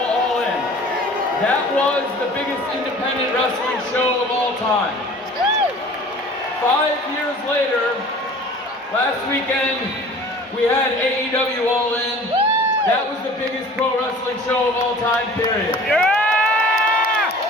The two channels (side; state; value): both; normal; correlation 0.46